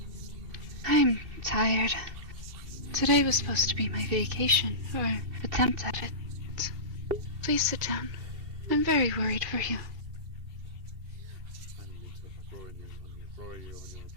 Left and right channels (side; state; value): left; late; 2.7 ms